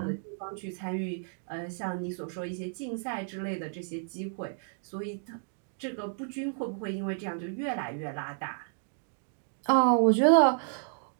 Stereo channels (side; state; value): left; silent; digital silence